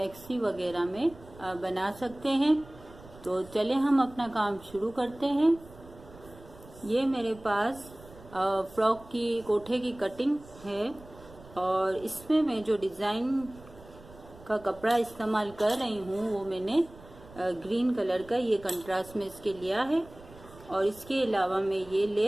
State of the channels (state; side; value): noise; right; rumble, 20 dB below the sound